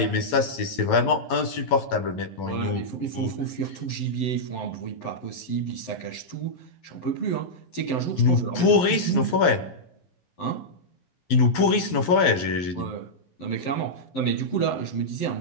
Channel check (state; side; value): late; right; 12 ms